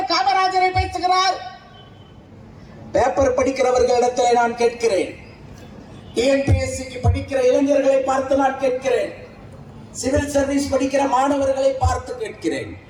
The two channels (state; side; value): identical; both; correlation 1.00